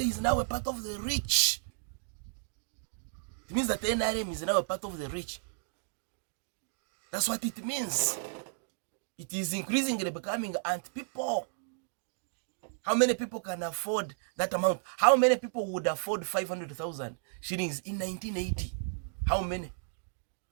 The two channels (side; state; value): left; silent; digital silence